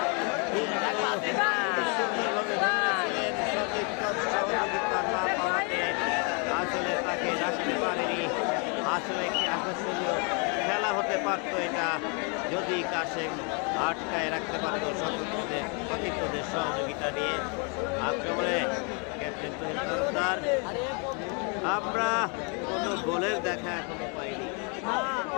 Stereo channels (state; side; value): quieter; right; 35.4 dB